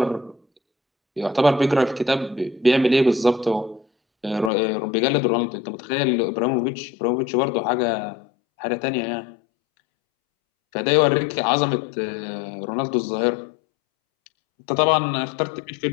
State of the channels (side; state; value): right; drops out; at 4.5 s